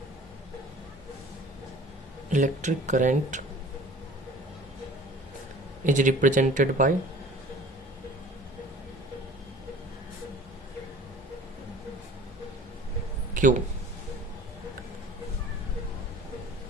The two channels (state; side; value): normal; both; correlation 0.47